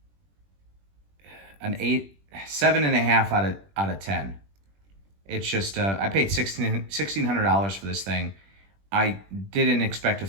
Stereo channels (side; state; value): left; late; 21 ms